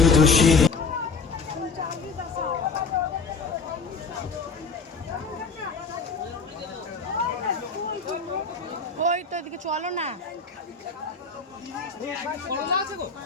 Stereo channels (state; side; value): quieter; right; 4.5 dB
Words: ওই তো এদিকে চলো না,